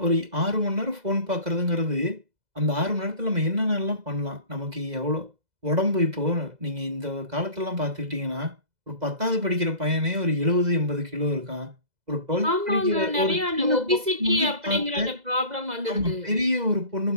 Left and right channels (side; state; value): left; late; 2.0 ms